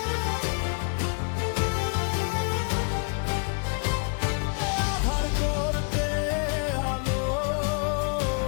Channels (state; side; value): quieter; right; 38.5 dB